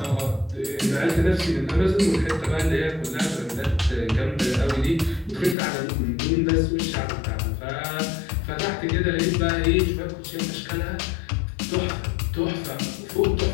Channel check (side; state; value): right; drops out; at 5.6 s